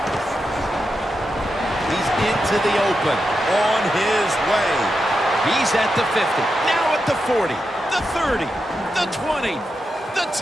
He's into the open. On his way. He's at the 50. Now at the 40. The 30. The 20. The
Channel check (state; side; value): normal; both; correlation 0.88